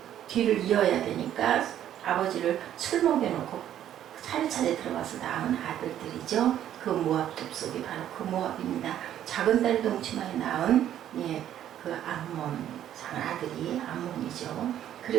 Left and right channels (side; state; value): left; quieter; 11.1 dB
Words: 뒤를 이어야 되니까 아버지를 술 먹여놓고 차례차례 들어가서 낳은 아들들이죠. 그 모압 족속이 바로 그 모압입니다. 작은 딸 동치마에 낳은 그 암몬 아들이 암몬이죠.